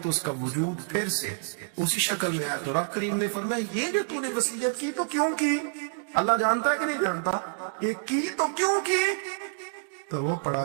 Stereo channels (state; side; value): silent; left; digital silence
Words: تو اس کا وجود پھر سے اسی شکل میں آیا۔ تو رب کریم نے فرمایا یہ جو تو نے وصیت کی تو کیوں کی؟ اللہ جانتا ہے کہ نہیں جانتا؟ یہ کی تو کیوں کی؟ تو وہ پڑا